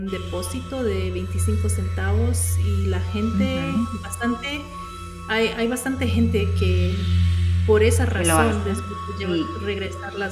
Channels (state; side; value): identical; both; correlation 1.00